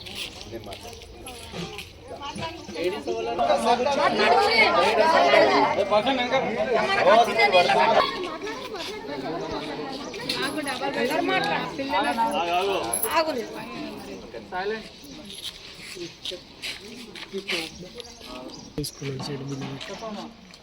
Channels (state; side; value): identical; both; correlation 1.00